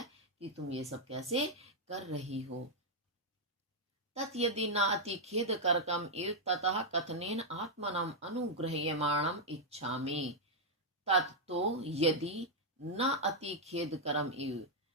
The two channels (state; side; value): normal; both; correlation -0.03